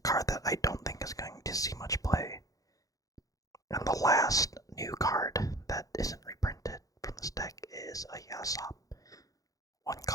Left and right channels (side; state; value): right; late; 0.17 ms